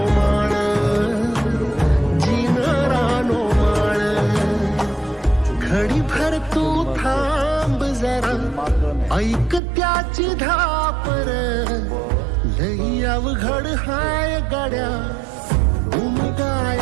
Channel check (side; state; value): left; drops out; at 9.6 s